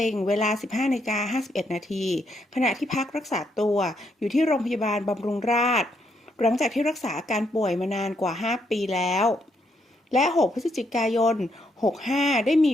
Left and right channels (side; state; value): both; normal; correlation 0.76